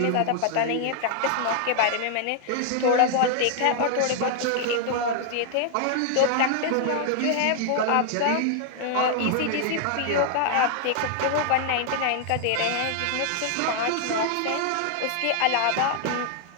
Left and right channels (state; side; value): different; both; correlation -0.01